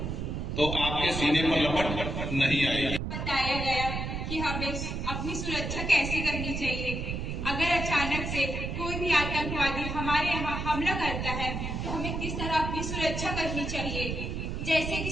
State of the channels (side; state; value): right; noise; rumble, 3 dB below the sound